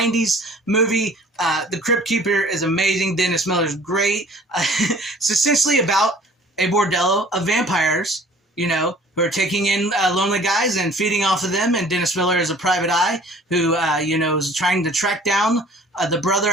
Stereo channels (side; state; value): both; normal; correlation 0.50